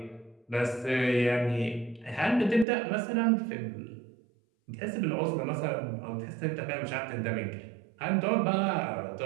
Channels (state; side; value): drops out; left; at 2.7 s